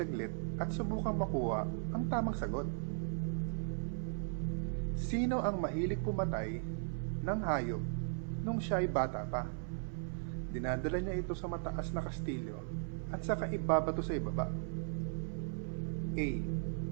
at subukang makuha ang tamang sagot. Sino ang mahilig pumatay ng hayop nung siya ay bata pa? Dinadala niya ito sa mataas na kastilyo at saka ibabato sa ibaba. A.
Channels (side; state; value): left; silent; 53 dB below the other